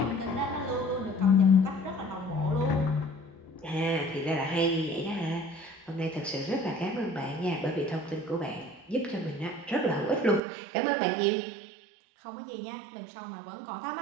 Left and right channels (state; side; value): drops out; left; at 10.4 s